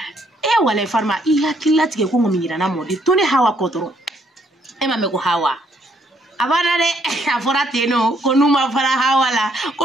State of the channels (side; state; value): both; normal; correlation 0.69